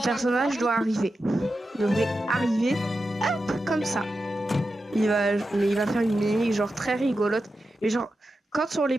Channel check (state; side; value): normal; both; correlation 0.90